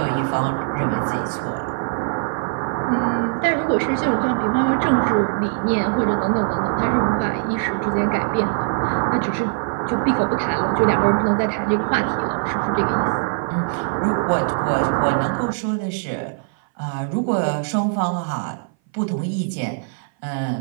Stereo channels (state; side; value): silent; left; 58 dB below the other